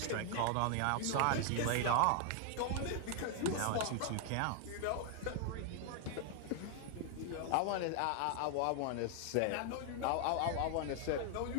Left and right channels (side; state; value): both; different; correlation 0.00